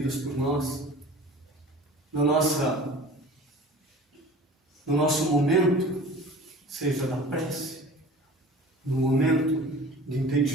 por nós, no nosso momento, seja da prece, no momento de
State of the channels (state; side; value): normal; both; correlation 0.42